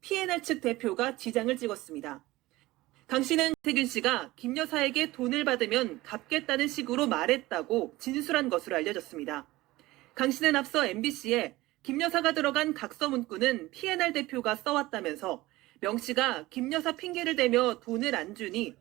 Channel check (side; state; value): left; quieter; 18.7 dB